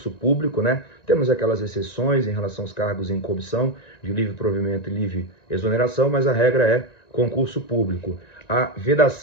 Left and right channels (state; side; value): late; right; 1.9 ms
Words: público, né? Temos aquelas exceções em relação aos cargos em comissão, de livre provimento e livre exoneração, mas a regra é concurso público. A